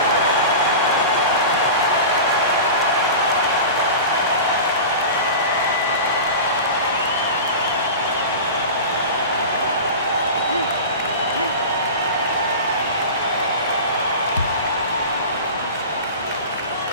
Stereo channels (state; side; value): inverted; both; correlation -0.31